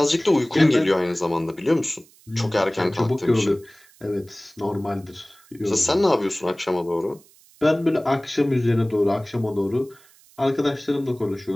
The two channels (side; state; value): right; noise; hiss, 28 dB below the sound